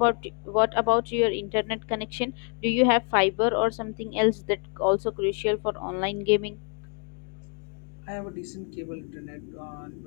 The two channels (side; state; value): right; quieter; 38.6 dB